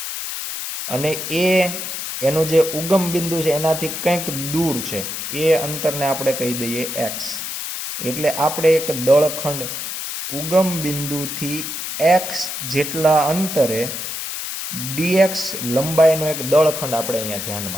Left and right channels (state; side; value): noise; left; hiss, 5 dB below the sound